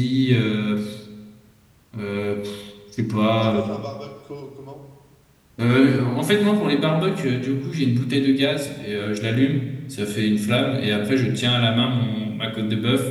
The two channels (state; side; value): identical; both; correlation 1.00